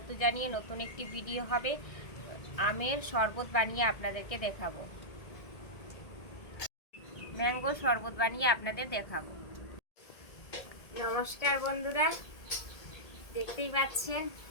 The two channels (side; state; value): right; late; 1.8 ms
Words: জানিয়ে নতুন একটি ভিডিও হবে। আমের শরবত বানিয়ে আপনাদেরকে দেখাবো। ম্যাঙ্গো শরবত বানিয়ে আপনাদের দেখাবো। নমস্কার বন্ধুরা, দেখতেই পাচ্ছেন